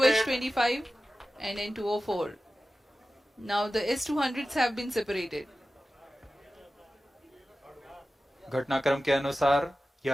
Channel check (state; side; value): normal; both; correlation 0.95